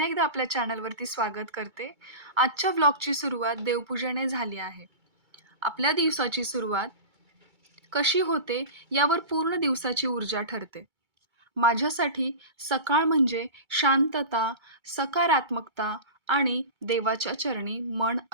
एकदा आपल्या चॅनलवरती स्वागत करते. आजच्या व्लॉगची सुरुवात देवपूजेने झाली आहे. आपल्या दिवसाची सुरुवात कशी होते यावर पूर्ण दिवसाची ऊर्जा ठरते. माझ्यासाठी सकाळ म्हणजे शांतता, सकारात्मकता आणि देवाच्या चरणी मन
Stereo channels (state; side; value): late; left; 2.3 ms